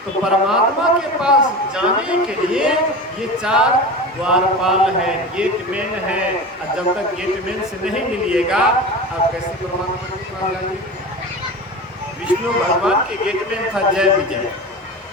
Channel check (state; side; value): normal; both; correlation 0.29